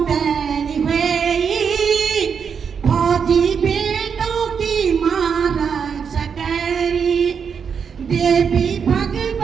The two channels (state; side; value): quieter; left; 6.6 dB